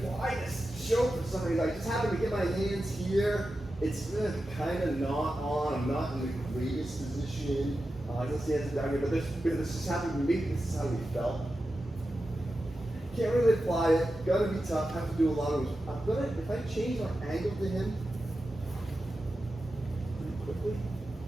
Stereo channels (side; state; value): both; normal; correlation 0.92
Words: this stroke for some reason. I just happen to get my hands here. It's kind of not on. I'm not in the greatest position. I just hands down here, but this just happened to me. This is how we felt. Can't really apply it. Gotta be tough. Have to do a lot of. If I change our angle to him pretty quickly,